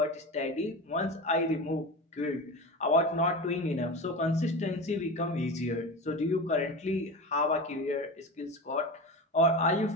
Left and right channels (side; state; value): both; normal; correlation 0.27